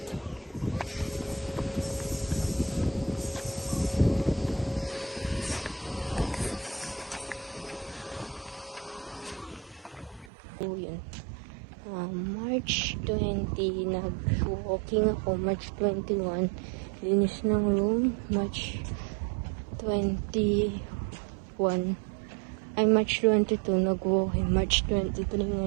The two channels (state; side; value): drops out; left; at 10.3 s